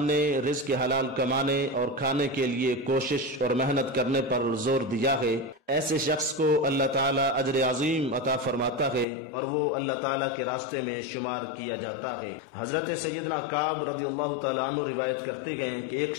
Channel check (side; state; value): right; drops out; at 9.1 s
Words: نے رزق حلال کمانے اور کھانے کے لیے کوشش اور محنت کرنے پر زور دیا ہے۔ ایسے شخص کو اللہ تعالیٰ اجر عظیم عطا فرماتا ہے اور وہ اللہ تعالیٰ کے راستے میں شمار کیا جاتا ہے۔ حضرت سیدنا کعب رضی اللہ تعالیٰ عنہ روایت کرتے ہیں کہ ایک